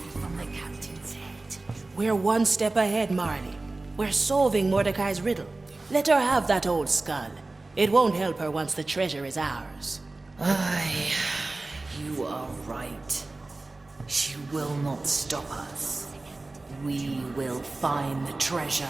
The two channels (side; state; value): left; quieter; 3.2 dB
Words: from the captain's head. We're one step ahead, Marley. We're solving Mordecai's riddle. Let her have that old skull. It won't help her once the treasure is ours. Aye, you are right. She will not stop us. We will find the treasure.